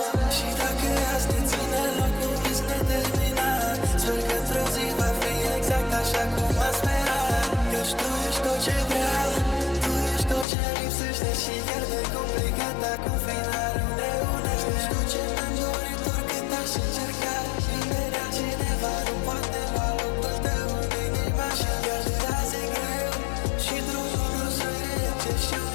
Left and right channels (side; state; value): right; drops out; at 10.5 s